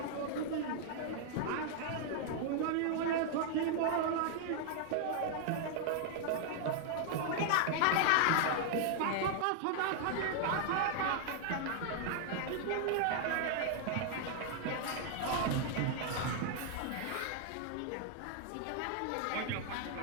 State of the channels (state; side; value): different; both; correlation 0.00